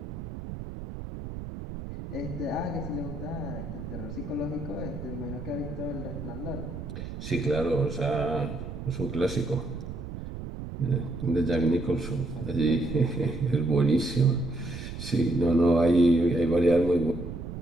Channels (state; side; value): noise; right; rumble, 9 dB below the sound